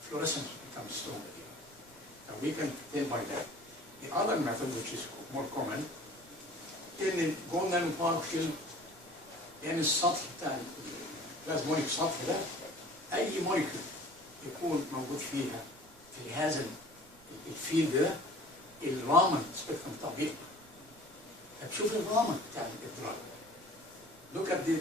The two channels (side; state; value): right; noise; rumble, 26 dB below the sound